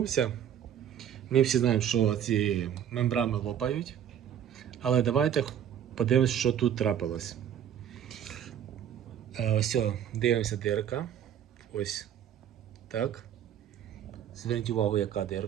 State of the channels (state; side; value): quieter; left; 9.6 dB